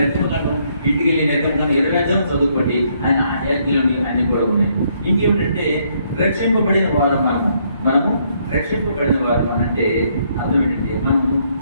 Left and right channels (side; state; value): both; inverted; correlation -0.71